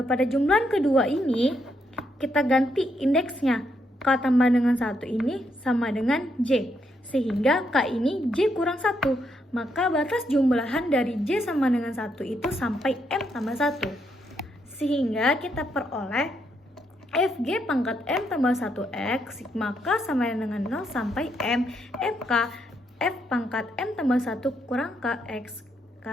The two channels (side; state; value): both; normal; correlation 0.77